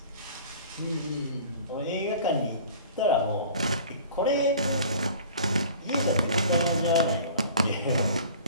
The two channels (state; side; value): inverted; both; correlation -0.45